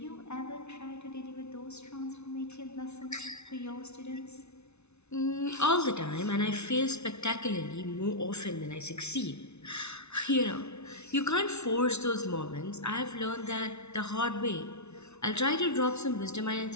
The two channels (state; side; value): late; right; 0.81 ms